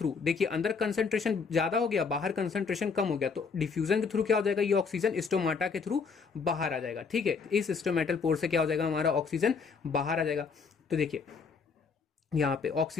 देखिए अंदर कंसंट्रेशन ज्यादा हो गया, बाहर कंसंट्रेशन कम हो गया, तो डिफ्यूजन के थ्रू क्या हो जाएगा? ये ऑक्सीजन स्टोमाटा के थ्रू बाहर आ जाएगा, ठीक है। इस स्टोमेटल पोर से क्या हो जाएगा? हमारा ऑक्सीजन बाहर आ जाएगा। तो देखिए यहाँ पे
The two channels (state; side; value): quieter; right; 5.3 dB